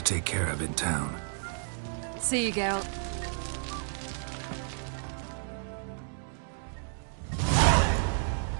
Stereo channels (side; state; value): left; silent; 57 dB below the other